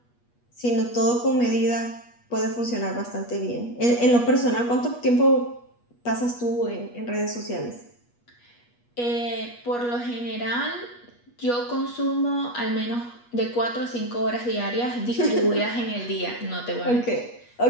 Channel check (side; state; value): right; late; 8.3 ms